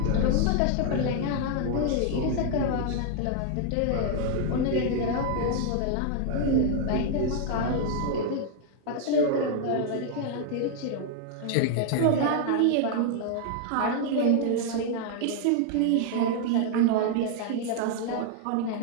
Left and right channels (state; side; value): different; both; correlation 0.00